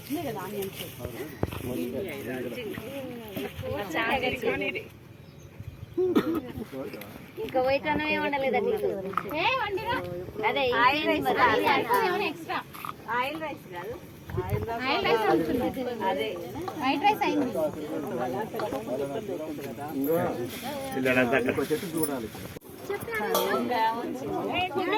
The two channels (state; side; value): identical; both; correlation 1.00